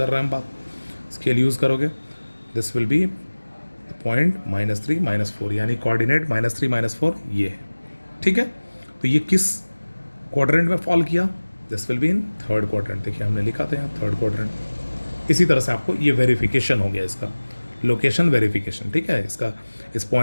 रहे हैं हम बात, स्केल यूज़ करोगे, दिस विल बी पॉइंट -3 -4, यानी कोऑर्डिनेट -3 -4 ये है, ठीक है। तो ये किस क्वाड्रेंट में फॉल किया, this will be in third quadrant. देखिए हमने लिखा था यहाँ थर्ड क्वाड्रेंट। इसी तरह से आपको ये वेरिफिकेशन हो गया, इसका लोकेशन वेरिफिकेशन, ठीक है। इसका इस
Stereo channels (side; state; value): both; inverted; correlation -1.00